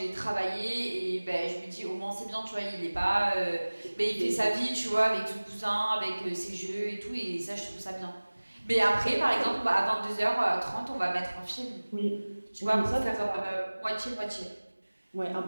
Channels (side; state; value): both; inverted; correlation -1.00